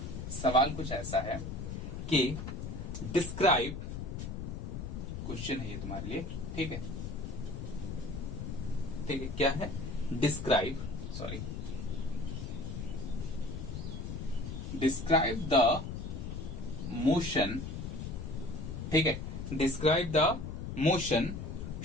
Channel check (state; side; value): noise; left; rumble, 6 dB below the sound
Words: सवाल कुछ ऐसा है कि डिस्क्राइब, क्वेश्चन है ये तुम्हारे लिए। ठीक है, ठीक है, क्या है, describe, sorry, describe the motion. ठीक है, describe the motion